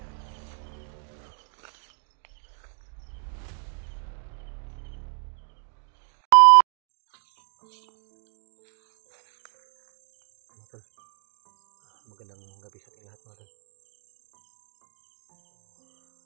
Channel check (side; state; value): left; silent; 58 dB below the other